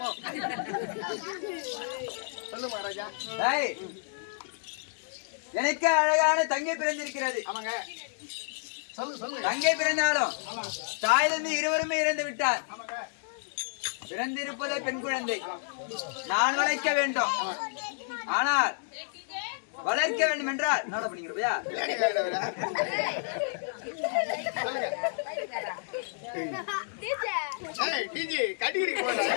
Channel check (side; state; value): right; silent; 58 dB below the other